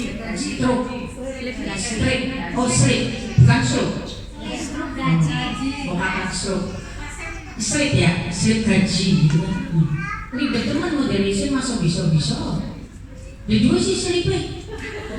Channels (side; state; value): both; identical; correlation 1.00